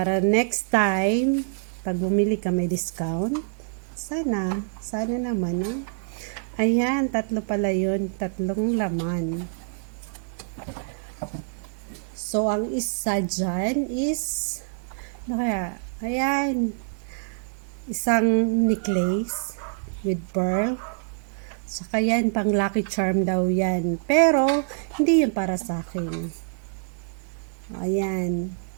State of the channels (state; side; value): silent; left; digital silence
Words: next time, pag bumili ka may discount, sana naman, no? Ayan, 3 pala yun, 3 laman. So, ang isa dyan is, ayan, isang necklace with pearl. Saka yan, pang lucky charm daw yan. Pero, hindi yan para sa akin. Ayan.